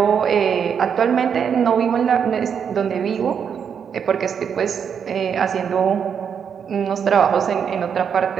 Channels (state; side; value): quieter; left; 7.4 dB